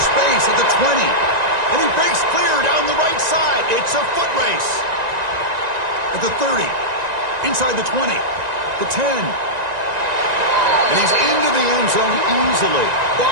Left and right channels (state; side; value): late; left; 1.9 ms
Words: space at the 20. And he breaks clear down the right side. It's a foot race. At the 30. Inside the 20. The 10. And he's into the end zone easily.